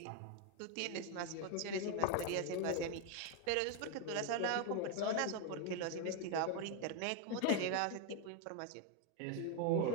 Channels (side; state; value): both; different; correlation 0.01